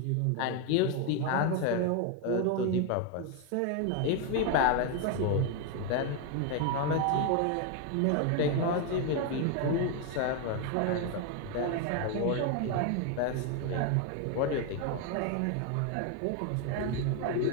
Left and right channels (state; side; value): different; both; correlation 0.01